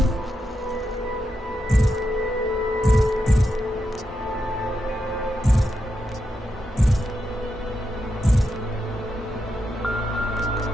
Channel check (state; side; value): normal; both; correlation 0.85